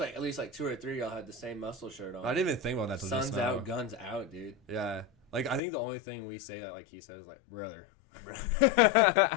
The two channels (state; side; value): drops out; right; at 5.6 s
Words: at least like 2 or 3 of y'all had the same muscle shirt on. I didn't even think about that till just now. Sun's out, guns out, dude. Yeah, like I think the only thing we say that like he says like brother.